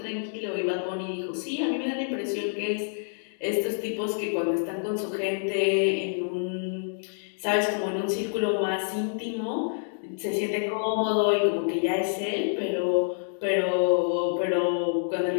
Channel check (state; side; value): silent; right; digital silence